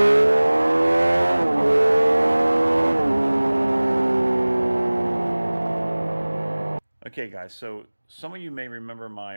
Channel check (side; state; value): both; inverted; correlation -1.00